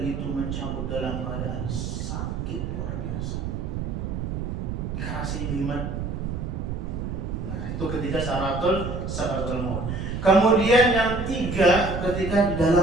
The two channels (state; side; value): noise; right; rumble, 4 dB below the sound